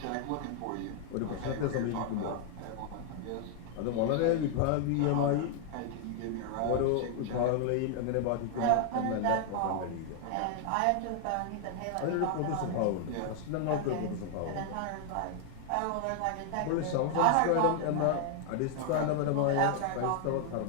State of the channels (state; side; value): different; both; correlation 0.00